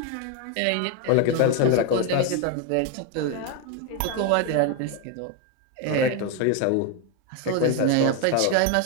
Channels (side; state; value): both; different; correlation 0.01